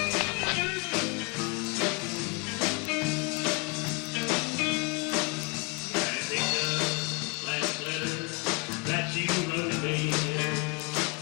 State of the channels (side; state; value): right; quieter; 30.0 dB